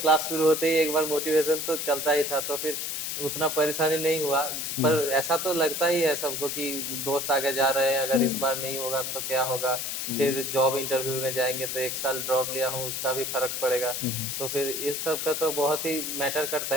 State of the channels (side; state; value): left; noise; hiss, 3 dB below the sound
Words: शुरू होते ही एक बार मोटिवेशन तो चलता ही था, तो फिर उतना परेशानी नहीं हुआ। हुँ, पर ऐसा तो लगता ही है सबको कि दोस्त आगे जा रहे हैं, अगर इस हुँ, बार नहीं होगा तो क्या होगा? हुँ, फिर जॉब इंटरव्यू में जाएँगे तो 1 साल ड्रॉप लिया हूँ, उसका भी फ़र्क पड़ेगा। हुँ, हुँ। तो फिर इस सब का तो बहुत ही मैटर करता